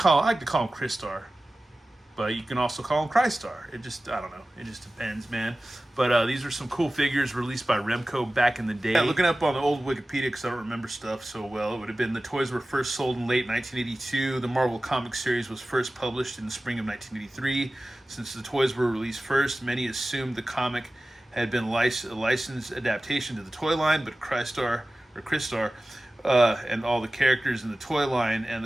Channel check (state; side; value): normal; both; correlation 0.96